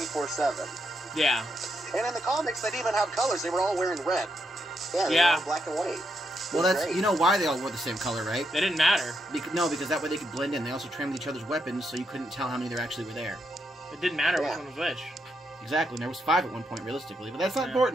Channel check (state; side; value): normal; both; correlation 0.80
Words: Yeah. And in the comics, they didn't even have colors. They were all wearing red. Yeah, they Yeah. were all black and white. Well, that's, Great. you know why they all wore the same color, right? They didn't matter. No, because that way they could blend in. They also trimmed each other's weapons, so you couldn't tell how many there actually were there. It didn't matter Yeah. which one was which. Exactly, and there was 5 at one point, realistically. But that's not Yeah.